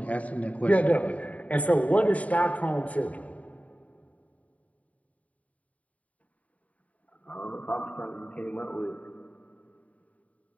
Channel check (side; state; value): right; late; 0.069 ms